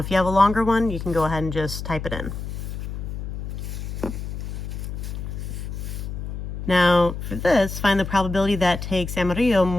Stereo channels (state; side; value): noise; left; hum, 6 dB below the sound